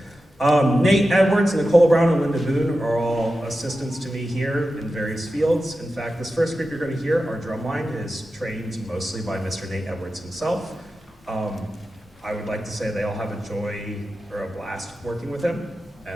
Nate Edwards, Nicole Brown, and Linda Boone are all assistants to me here in various fields. In fact, this first group you're going to hear, our drumline, is trained mostly by Mr. Nate Edwards himself. I would like to say they all have a joy or a blast working with him,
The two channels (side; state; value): both; normal; correlation 0.92